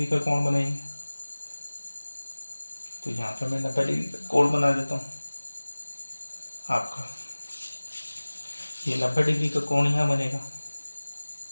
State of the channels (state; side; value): inverted; both; correlation -1.00